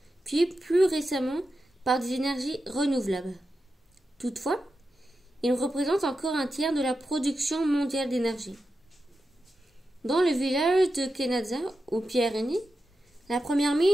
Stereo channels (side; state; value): both; normal; correlation 0.90